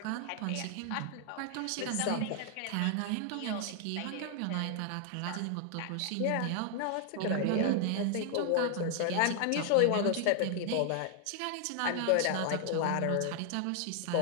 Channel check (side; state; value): both; different; correlation 0.00